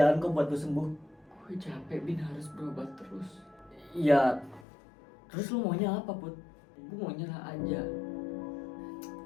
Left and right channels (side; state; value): right; drops out; at 4.7 s